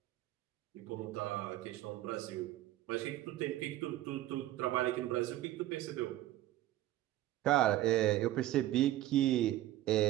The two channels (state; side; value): quieter; left; 14.6 dB